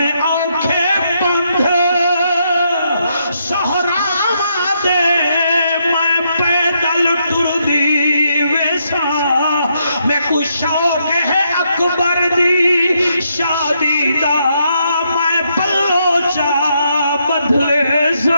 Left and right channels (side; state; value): both; inverted; correlation -0.77